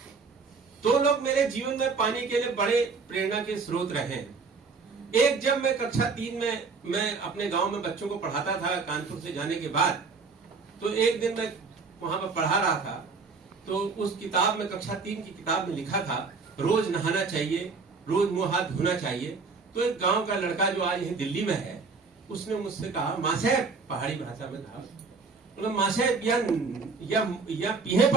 दो लोग मेरे जीवन में पानी के लिए बड़े प्रेरणा के स्रोत रहे हैं। एक, जब मैं कक्षा 3 में मैं अपने गांव में बच्चों को पढ़ाता था कानपुर से जाने के बाद, तो एक दिन मैं वहां पर पढ़ा रहा था, तो उस किताब में, कक्षा 3 की किताब में लिखा था रोज नहाना चाहिए, रोज मुंह हाथ धोना चाहिए। तो एक गांव का लड़का जो आज यही दिल्ली में है, उसने मुझसे कहा, मासेब, पहाड़ी भाषा में कहा, मतलब मासेब या पीहे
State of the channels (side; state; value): left; quieter; 4.6 dB